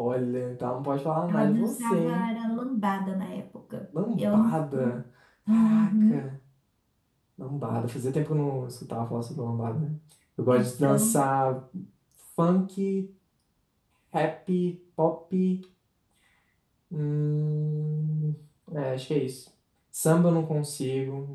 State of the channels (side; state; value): both; identical; correlation 1.00